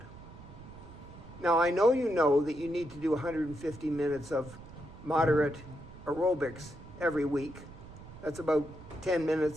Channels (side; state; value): right; noise; rumble, 16 dB below the sound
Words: Now, I know that you need to do 150 minutes of moderate aerobics every week. That's about 10